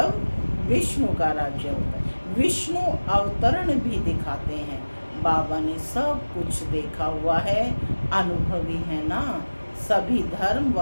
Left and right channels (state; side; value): inverted; both; correlation -1.00